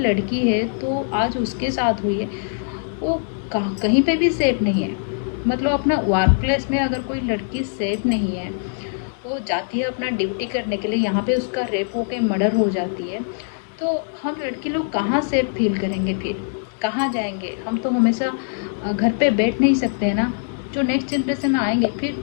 है तो आज उसके साथ हुई है, वो कहीं पे भी सेफ नहीं है। मतलब अपना वर्क प्लेस में अगर कोई लड़की सेफ नहीं है, वो जाती है अपना ड्यूटी करने के लिए, यहाँ पे उसका रेप हो के मर्डर हो जाती है, तो हम लड़की लोग कहाँ सेफ फील करेंगे? फिर कहाँ जाएंगे? हम तो हमेशा घर पे बैठ नहीं सकते हैं ना। जो नेक्स्ट जनरेशन आएंगे फिर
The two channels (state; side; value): silent; right; digital silence